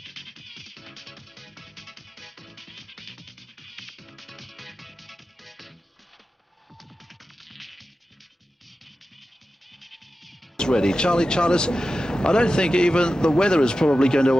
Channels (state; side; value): normal; both; correlation 0.93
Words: Ready. Charlie Charters, I don't think even the weather is probably going to